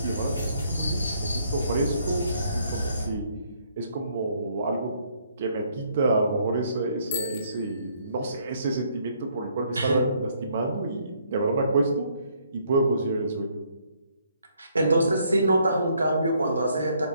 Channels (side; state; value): both; inverted; correlation -0.68